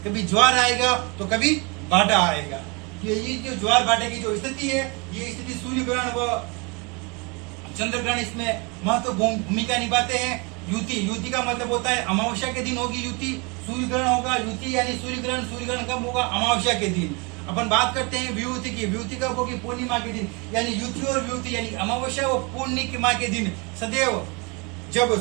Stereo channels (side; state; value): left; quieter; 30.0 dB